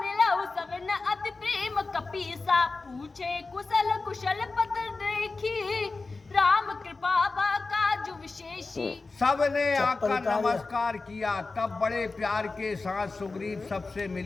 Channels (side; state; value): right; quieter; 3.8 dB